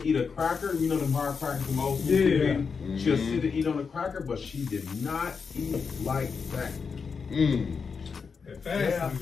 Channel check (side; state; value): right; quieter; 5.5 dB